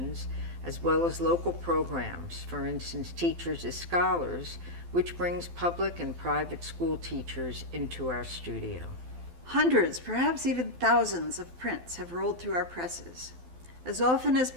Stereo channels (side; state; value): left; late; 12 ms